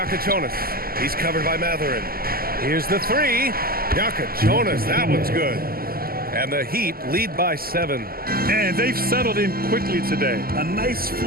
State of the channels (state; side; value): late; left; 0.43 ms